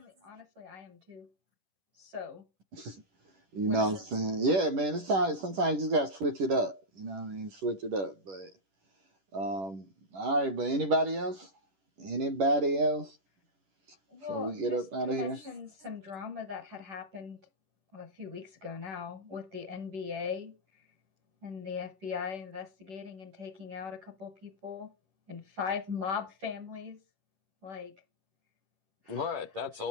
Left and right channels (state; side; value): late; left; 10 ms